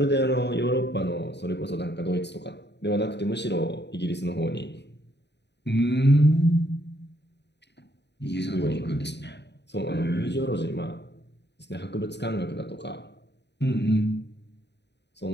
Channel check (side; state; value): right; late; 0.50 ms